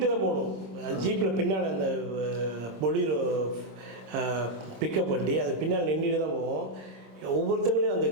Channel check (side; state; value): left; late; 26 ms